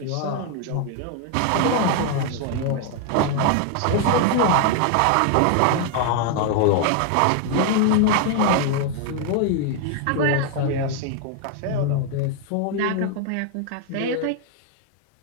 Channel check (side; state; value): both; different; correlation 0.00